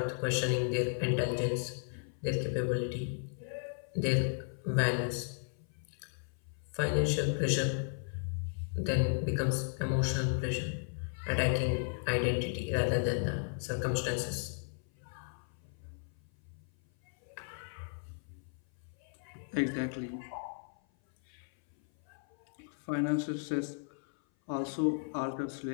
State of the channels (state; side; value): silent; right; 54 dB below the other